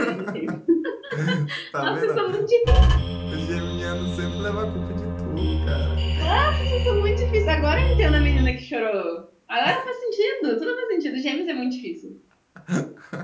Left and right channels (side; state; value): both; identical; correlation 1.00